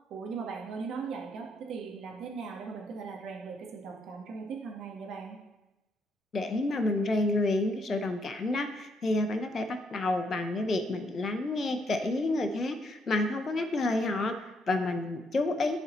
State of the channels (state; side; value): normal; both; correlation 0.74